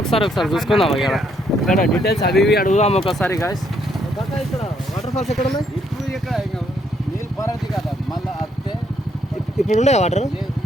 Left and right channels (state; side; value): normal; both; correlation 0.71